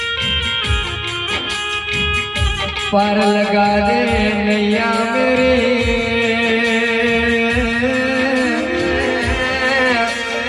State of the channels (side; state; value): both; identical; correlation 1.00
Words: पार लगा दे नैया मेरे